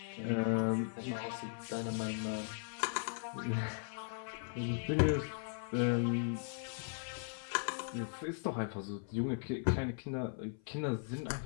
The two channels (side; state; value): right; silent; 52 dB below the other